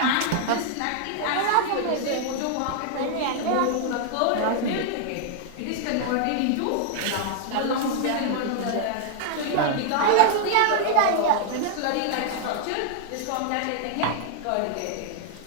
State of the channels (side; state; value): both; different; correlation 0.00